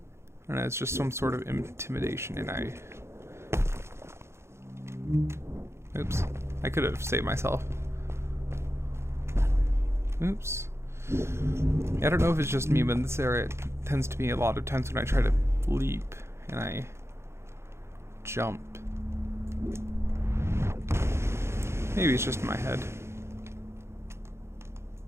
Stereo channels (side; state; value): left; late; 0.13 ms